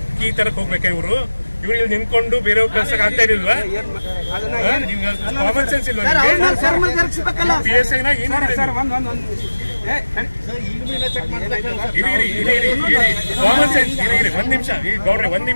ಕೀ ತರಕ್ ಹೋಗ್ಬೇಕಾ ಇವ್ರು ಇಲ್ಲಿ ನಿಂತ್ಕೊಂಡು ಬೇರೆ ಕಳ್ಸಕ್ ಆಗ್ತಾ ಇರಲಿಲ್ವಾ? ಕಾಮನ್ ಸೆನ್ಸ್ ಇಲ್ವಾ? PSI ನ ಕಾಮನ್ ಸೆನ್ಸ್ ಒಂದ್ ನಿಮಿಷ ಗೌಡ್ರೆ ಒಂದ್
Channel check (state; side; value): inverted; both; correlation -1.00